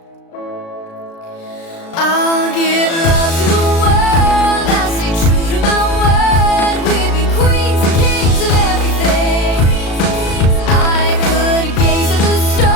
I'll give love to the world, I'll stay true to my word. We'd be queens and kings of everything. I could gaze at the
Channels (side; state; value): right; late; 36 ms